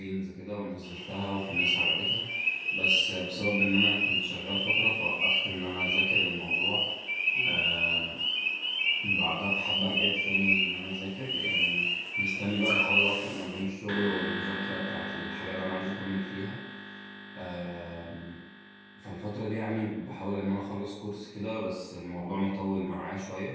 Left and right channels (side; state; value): both; identical; correlation 1.00